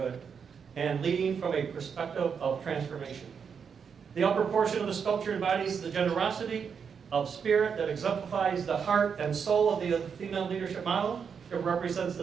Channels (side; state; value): left; quieter; 6.6 dB